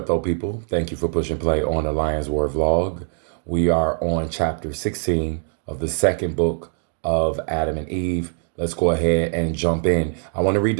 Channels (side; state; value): left; silent; 57 dB below the other